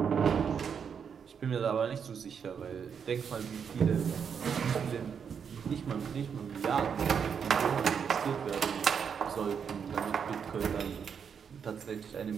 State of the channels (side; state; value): left; quieter; 7.0 dB